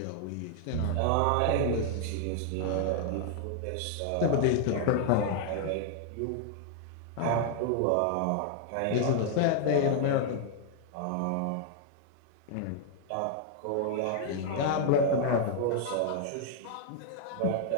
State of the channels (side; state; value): both; different; correlation 0.00